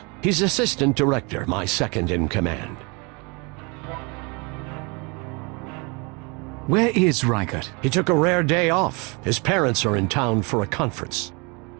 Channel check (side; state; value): left; quieter; 29.7 dB